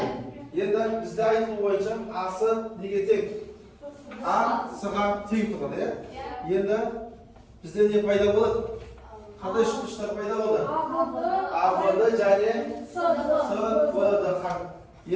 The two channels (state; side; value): identical; both; correlation 1.00